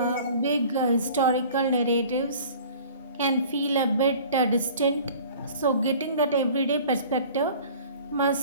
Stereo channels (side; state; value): both; inverted; correlation -0.46